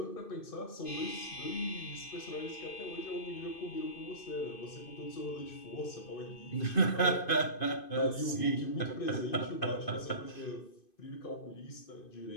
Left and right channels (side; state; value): right; late; 2.5 ms